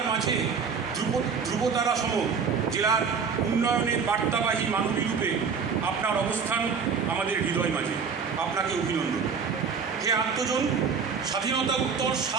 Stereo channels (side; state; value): left; quieter; 5.9 dB